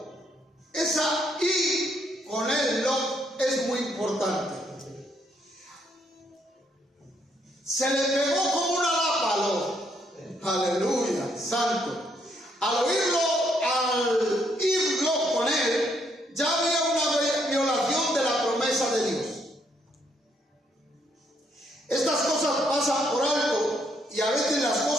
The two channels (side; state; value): both; normal; correlation 0.73